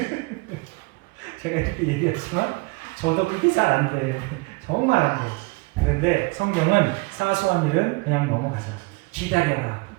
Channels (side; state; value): left; quieter; 26.7 dB